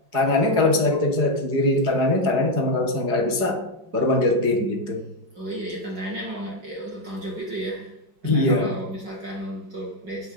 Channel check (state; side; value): late; left; 4.9 ms